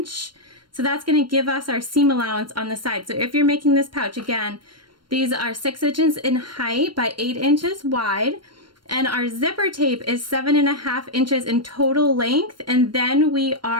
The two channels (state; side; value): late; left; 0.72 ms